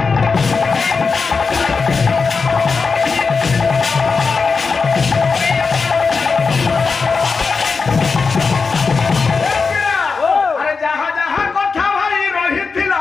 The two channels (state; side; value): quieter; right; 4.8 dB